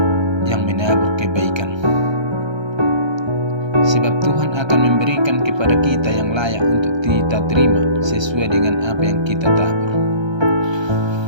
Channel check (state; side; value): late; left; 1.3 ms